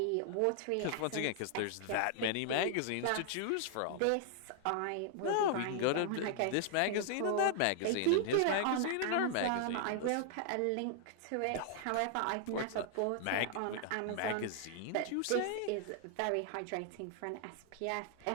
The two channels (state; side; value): different; both; correlation 0.00